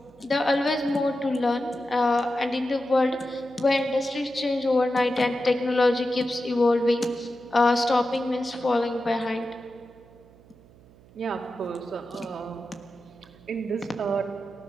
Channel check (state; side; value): noise; right; hum, 25 dB below the sound